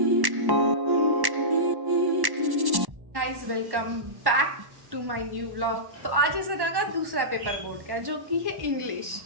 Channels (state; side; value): late; left; 1.1 ms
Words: Guys welcome back to my new vlog. तो आज है सना का दूसरा पेपर बोर्ड का जो कि है इंग्लिश,